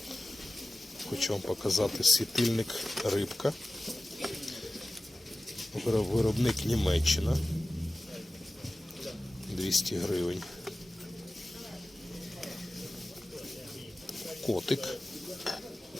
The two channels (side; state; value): both; normal; correlation 0.96